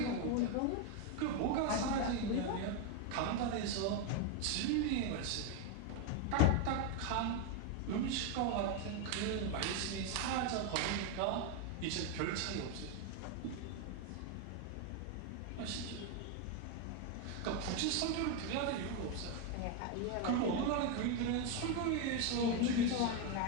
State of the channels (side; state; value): both; different; correlation 0.02